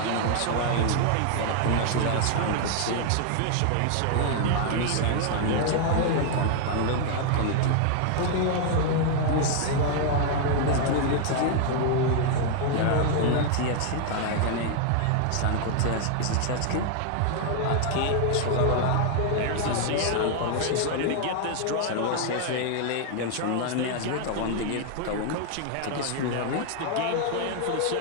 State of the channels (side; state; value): both; different; correlation 0.00